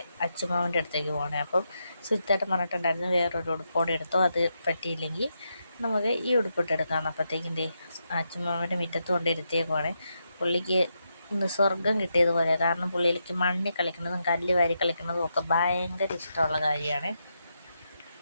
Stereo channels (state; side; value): inverted; both; correlation -0.84